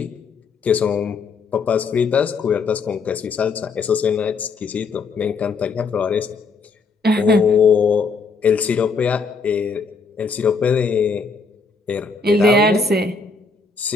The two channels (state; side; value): quieter; right; 4.5 dB